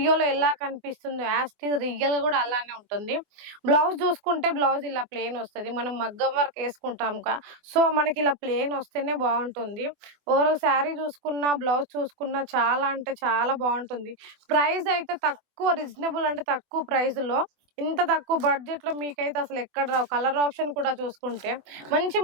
ఎలా కనిపిస్తుందో యాస్టీస్ రియల్ గా కూడా అలానే ఉంటుంది. బ్లౌజ్ చూసుకుంటే బ్లౌజ్ ఇలా ప్లెయిన్ వస్తుంది. మనం మగ్గం వర్క్ వేసుకుంటాం సో మనకి ఇలా ప్లెయిన్ వస్తేనే బాగుంటుంది. ఓవరాల్ శారీ చూసుకున్నా బ్లౌజ్ చూసుకున్నా చాలా అంటే చాలా బాగుంటుంది. ప్రైస్ అయితే తక్కువ, రీజనబుల్ అంటే తక్కువ ప్రైస్ లో ఇంత తక్కువ బడ్జెట్ లో మీకైతే అసలు ఎక్కడ రావు. కలర్ ఆప్షన్ కూడా చూసుకుంటే మంచి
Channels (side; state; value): left; late; 24 ms